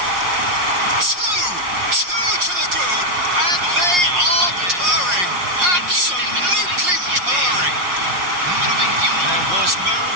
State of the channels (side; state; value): left; late; 5.6 ms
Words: Two to the good, and they are purring. Absolutely purring. There was no